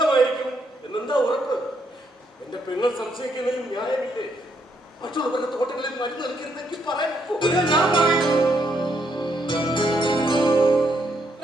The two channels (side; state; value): both; normal; correlation 0.75